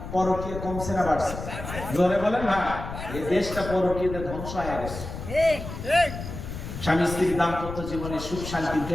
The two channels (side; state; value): left; noise; rumble, 9 dB below the sound